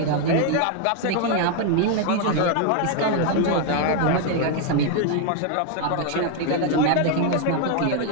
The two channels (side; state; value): both; different; correlation 0.01